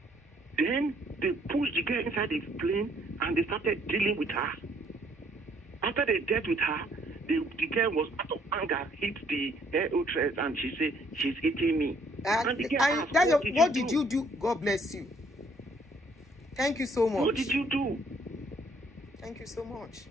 Then they pushed the girl inside the plane and they started dealing with her. After they dealt with her, the girl was out of anger, hit the air hostess, and she said, "She's hitting me." And the girl asked, what did you do? God bless you. Thank you so much. What did you do? Thank you so much.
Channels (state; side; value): normal; both; correlation 0.64